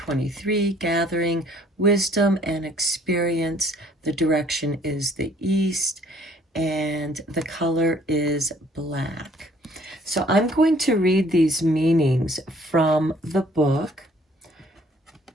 gathering wisdom and experience. The direction is the east, and the color is black. So I'm going to read these meanings from the book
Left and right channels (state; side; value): normal; both; correlation 0.59